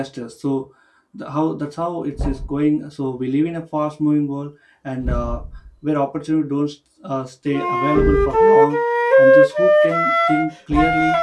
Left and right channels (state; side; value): identical; both; correlation 1.00